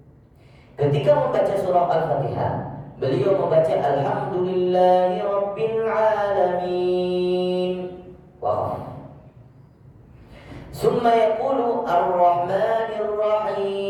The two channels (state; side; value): identical; both; correlation 1.00